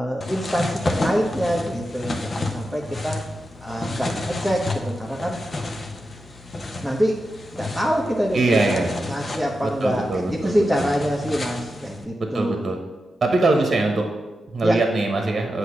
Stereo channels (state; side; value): normal; both; correlation 0.89